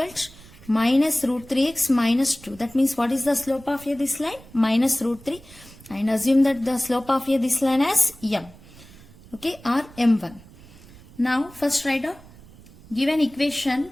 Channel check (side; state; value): right; noise; rumble, 22 dB below the sound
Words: to minus root 3x minus 2. That means what is the slope of this line? Minus root 3. And assume that the slope of this line as m. Okay, or m1. Now first write down given equation